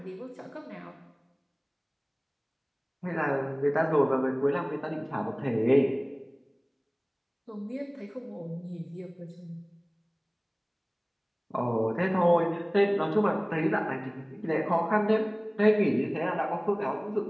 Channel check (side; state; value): both; identical; correlation 1.00